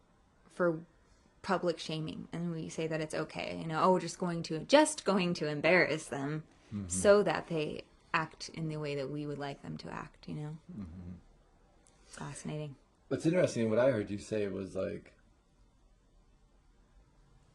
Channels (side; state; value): both; identical; correlation 1.00